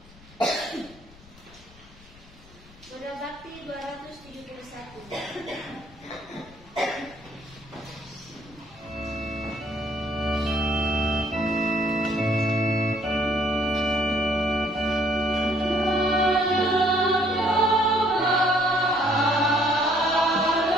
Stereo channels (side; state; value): left; noise; rumble, 24 dB below the sound